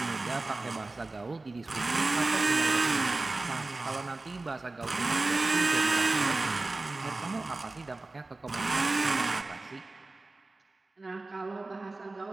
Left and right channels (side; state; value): left; quieter; 3.2 dB